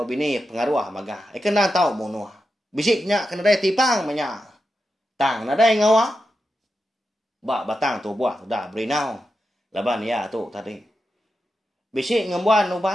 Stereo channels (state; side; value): normal; both; correlation 0.89